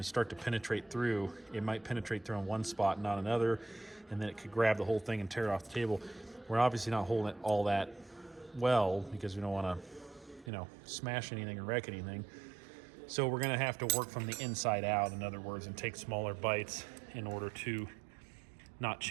start to penetrate through, it might penetrate through on one spot and not another, and then it could grab the whole thing and tear it off the table. We're obviously not holding it all that well because we don't want to, you know, smash anything or wreck anything. So we're going to have to work from the inside out, in other words, and take smaller bites in order to not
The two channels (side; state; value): left; drops out; at 10.5 s